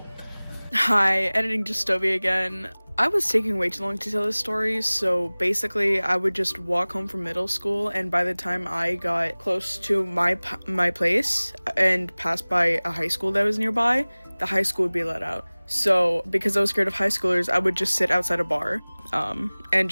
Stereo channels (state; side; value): inverted; both; correlation -1.00